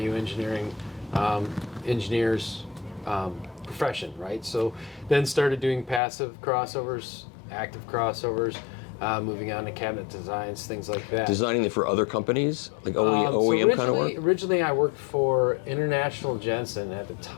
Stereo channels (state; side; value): drops out; right; at 6.0 s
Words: engineering engineer's profession, right? So then started doing passive crossovers, active crossovers, moving on to cabinet designs, things like that. Designing it for other companies, like OEM kind of work? Originally, I worked for International Jensen. At the